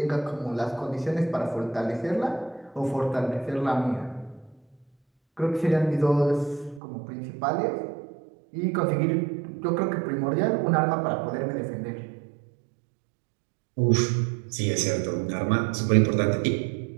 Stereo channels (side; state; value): left; drops out; at 6.8 s